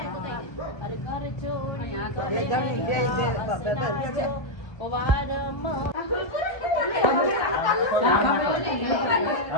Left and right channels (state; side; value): late; right; 1.2 ms